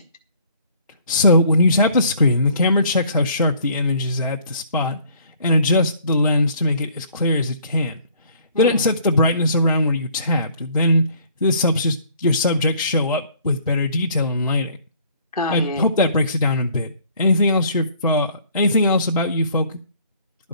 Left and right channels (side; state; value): both; inverted; correlation -0.58